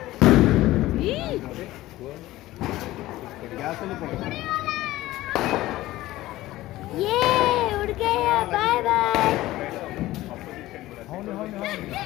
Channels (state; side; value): quieter; right; 16.6 dB